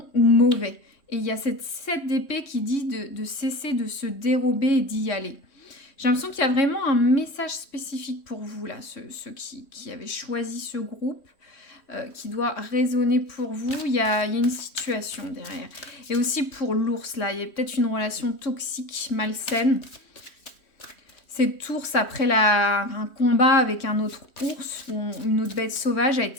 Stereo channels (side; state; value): right; late; 3.1 ms